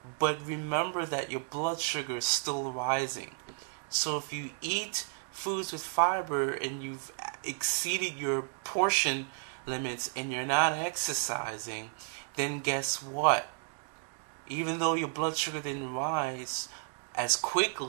but remember that your blood sugar is still rising. So if you eat foods with fiber and you've exceeded your portion limits and you're not exercising, then guess what? Even though your blood sugar didn't rise as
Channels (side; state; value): left; silent; 56 dB below the other